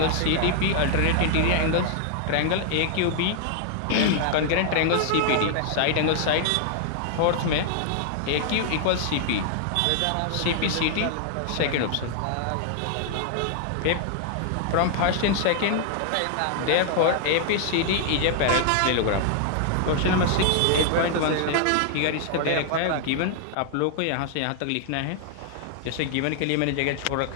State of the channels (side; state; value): both; different; correlation 0.00